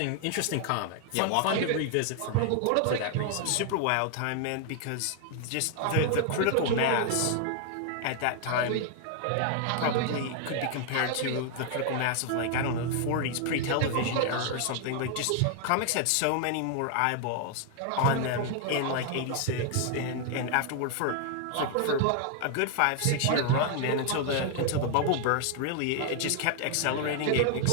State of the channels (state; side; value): different; both; correlation 0.00